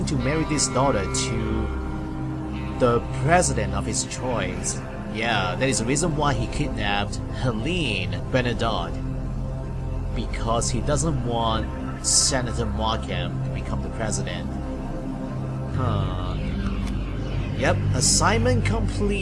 to marry this daughter to the president of his choice. Yeah, that is the reason why he kidnapped Helene Bernadotte. Because he doesn't want Senator Markham to become the president. Huh. Yep, assignment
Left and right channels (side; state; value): both; identical; correlation 1.00